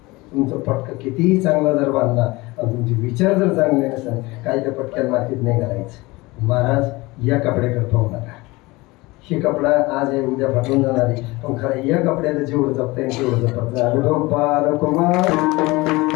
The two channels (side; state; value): right; quieter; 22.1 dB